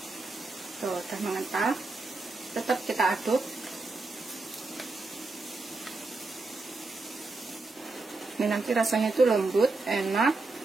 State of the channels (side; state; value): left; quieter; 3.5 dB